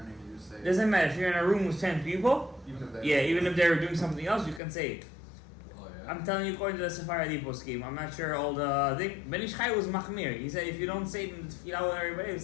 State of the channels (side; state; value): right; drops out; at 4.6 s